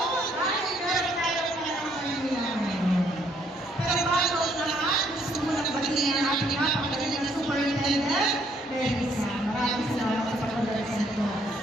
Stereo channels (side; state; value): both; normal; correlation 0.68